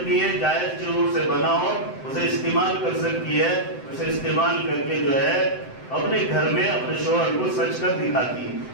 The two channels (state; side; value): late; right; 7.8 ms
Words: ہے، جائز چیزوں سے بنا ہو اسے استعمال کر سکتی ہے. اسے استعمال کر کے جو ہے اپنے گھر میں اپنے شوہر کو سج کر دکھاتی ہے.